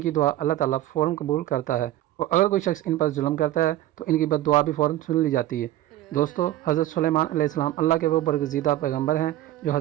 दुआ अल्लाह ताला फ़ौरन कबूल करता है, और अगर कोई शख्स इन पर जुल्म करता है तो इनकी बद्दुआ भी फ़ौरन सुन ली जाती है। दोस्तों, हज़रत सुलेमान अलैहिस्सलाम अल्लाह के वो बरगज़ीदा पैगम्बर हैं जो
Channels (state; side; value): quieter; left; 14.3 dB